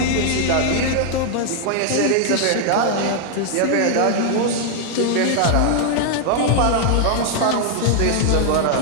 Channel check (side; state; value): both; different; correlation 0.00